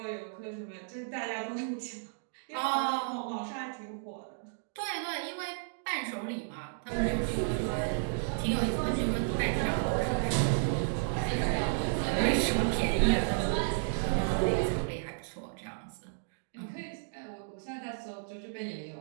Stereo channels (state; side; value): silent; left; digital silence